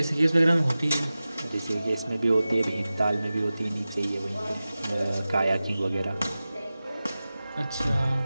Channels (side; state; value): both; inverted; correlation -0.96